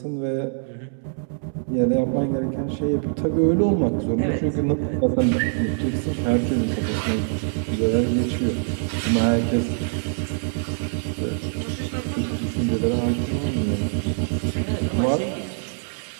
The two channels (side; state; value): left; silent; 63 dB below the other